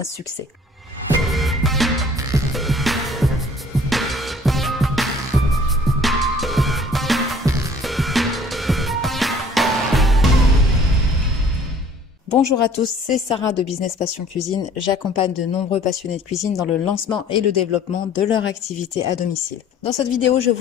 succès. Bonjour à tous, c'est Sarah de Business Passion Cuisine. J'accompagne de nombreux passionnés de cuisine dans le lancement et le développement de leur activité à domicile. Dans cette vidéo, je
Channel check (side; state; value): both; normal; correlation 0.53